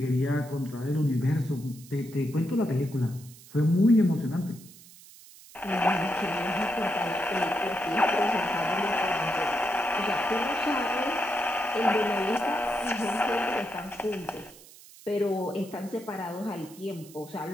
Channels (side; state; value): right; noise; hiss, 21 dB below the sound